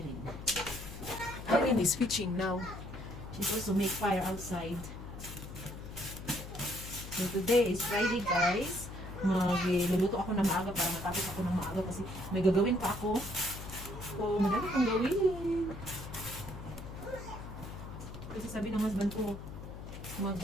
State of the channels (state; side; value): noise; left; hum, 11 dB below the sound